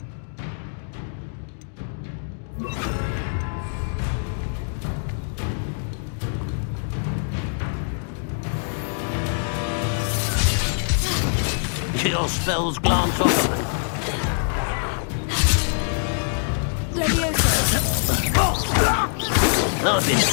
Your spells glance off of me. Levioso! I've been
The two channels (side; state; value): right; silent; digital silence